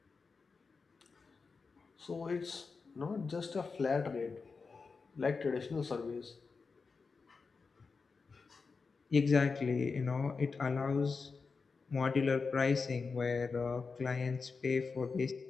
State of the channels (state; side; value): quieter; right; 4.7 dB